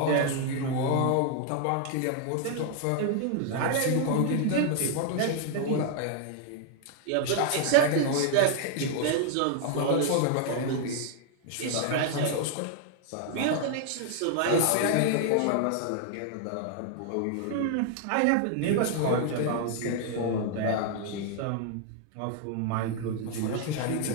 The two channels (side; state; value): both; different; correlation 0.00